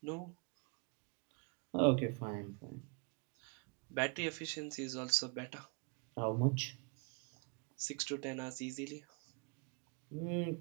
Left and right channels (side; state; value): left; quieter; 34.4 dB